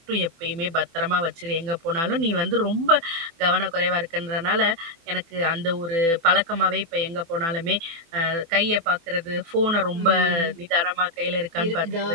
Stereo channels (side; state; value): left; late; 24 ms